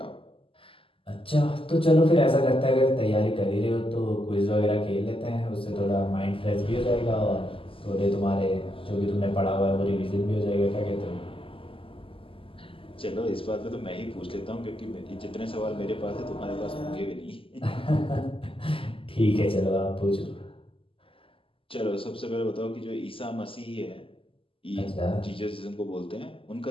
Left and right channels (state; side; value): late; right; 0.26 ms